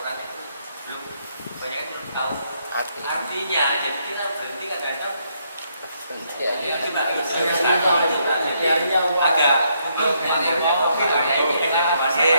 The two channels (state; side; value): inverted; both; correlation -0.74